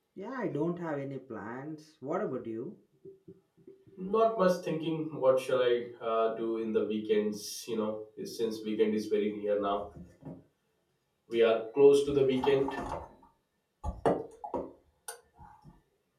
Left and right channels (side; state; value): both; identical; correlation 1.00